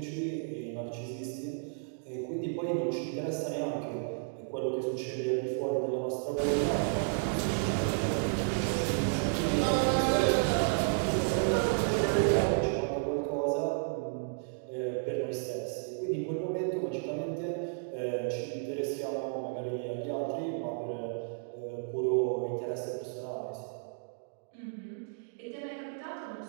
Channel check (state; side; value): silent; left; digital silence